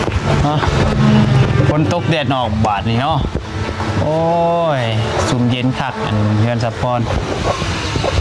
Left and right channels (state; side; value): identical; both; correlation 1.00